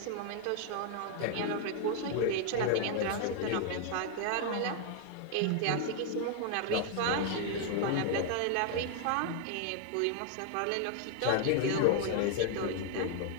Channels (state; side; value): different; both; correlation 0.00